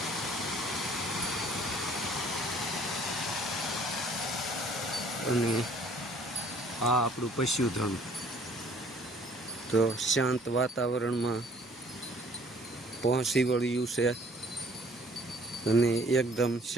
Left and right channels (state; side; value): normal; both; correlation 0.57